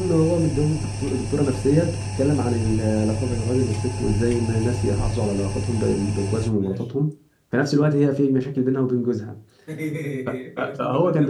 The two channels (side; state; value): both; identical; correlation 1.00